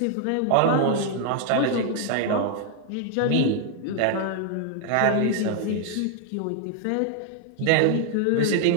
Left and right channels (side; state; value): both; different; correlation 0.00